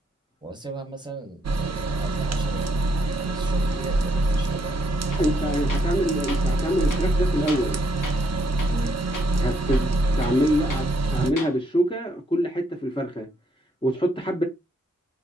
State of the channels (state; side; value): normal; both; correlation 0.73